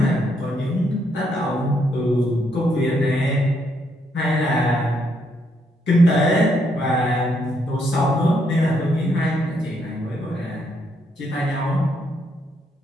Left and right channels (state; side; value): normal; both; correlation 0.74